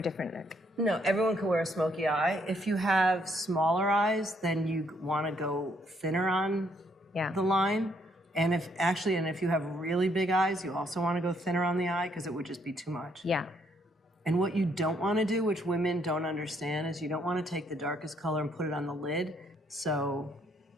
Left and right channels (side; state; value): both; normal; correlation 0.70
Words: different look? No, everyone can wear a smoky eye. If you have smaller eyes, then you want to go thinner on the line. And if you have really big eyes, you also want to go thinner on the eye because it would just be too much. Yeah. And what you don't want to do, which women don't understand, is you don't want to take the darkest color and put it on the lid. So